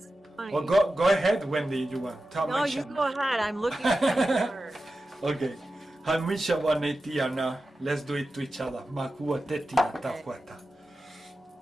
funny. Well, go ahead, Wendy. You want? No, you go ahead. I'm looking at the card. Okay. Hamisha wanetiana. Let's do it to each other. Makua tetia takwata.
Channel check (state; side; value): normal; both; correlation 0.93